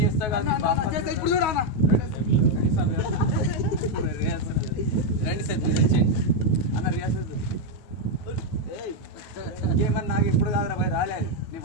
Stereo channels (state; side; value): late; right; 9.3 ms